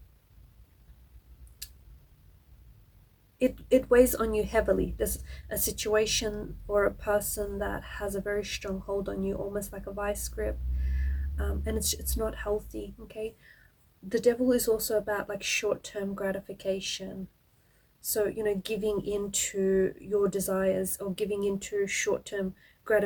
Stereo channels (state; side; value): identical; both; correlation 1.00